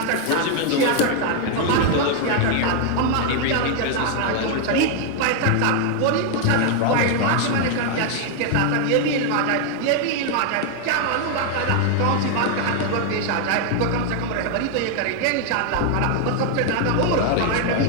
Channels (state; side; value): different; both; correlation 0.00